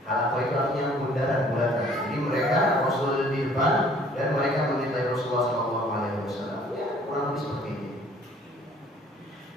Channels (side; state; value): both; normal; correlation 0.56